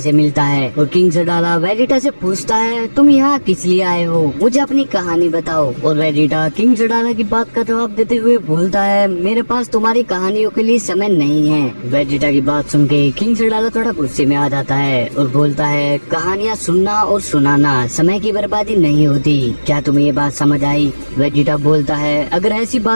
मिलता है और किंग सडाला वेजिटा से पूछता है तुम यहाँ किस लिए आए हो, मुझे अपनी कहानी बताओ। और वेजिटा किंग सडाला की बात का जवाब देते हुए बोलता है मेरे पास तुम्हारी कहानियों के लिए समय नहीं है। वेजिटा की बात सुन के किंग सडाला थोड़ा गुस्से में आ जाता है और बोलता है कहानियाँ सुनना और सुनाना समय की बर्बादी नहीं होती, क्या तुम्हें ये बात समझ आई? वेजिटा बोलता है अगर ऐसी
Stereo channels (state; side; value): inverted; both; correlation -1.00